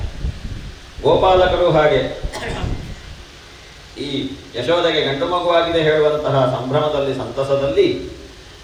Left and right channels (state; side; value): identical; both; correlation 1.00